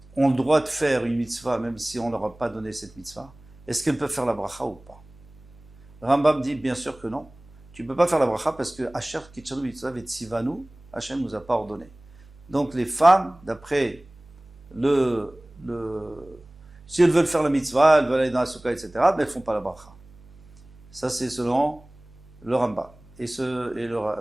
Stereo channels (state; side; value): noise; right; hum, 25 dB below the sound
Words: ont le droit de faire une mitzvah, même si on ne leur a pas donné cette mitzvah, est-ce qu'elles peuvent faire la bracha ou pas? Rambam dit bien sûr que non. Tu ne peux pas faire la bracha parce que Asher Kitchanu Mitzvah Vetsivanu, Hachem nous a pas ordonné. Donc les femmes, d'après si elles veulent faire la mitzvah, elles veulent aller dans la soukha, etc., mais elles ne font pas la bracha. Ça, c'est selon le Rambam. Et le